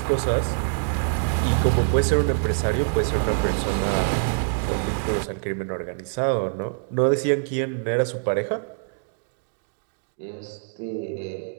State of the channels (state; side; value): silent; left; digital silence